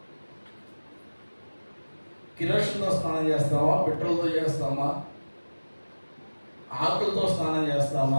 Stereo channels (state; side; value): inverted; both; correlation -1.00